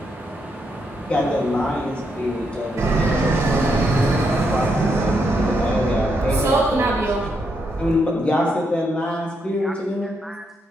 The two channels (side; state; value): both; normal; correlation 0.79